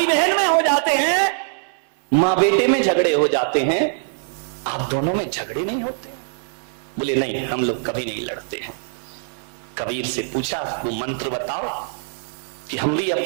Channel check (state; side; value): silent; left; 64 dB below the other